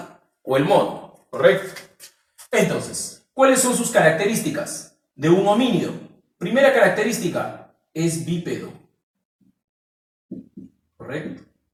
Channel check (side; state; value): both; identical; correlation 1.00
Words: o el mono. ¿Correcto? Entonces, ¿cuáles son sus características de un homínido? Primera característica, es bípedo. ¿Correcto?